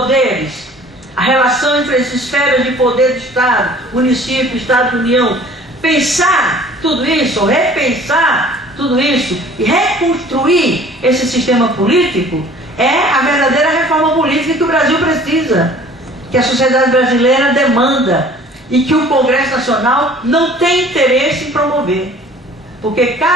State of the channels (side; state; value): both; normal; correlation 0.50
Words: a relação entre as esferas de poder do Estado, município, Estado, União, pensar tudo isso, repensar tudo isso e reconstruir esse sistema político é a verdadeira reforma política que o Brasil precisa, que a sociedade brasileira demanda e que o Congresso Nacional não tem interesse em promover. Porque